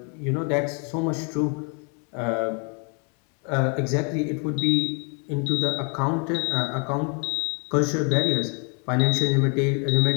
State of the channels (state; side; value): quieter; right; 37.4 dB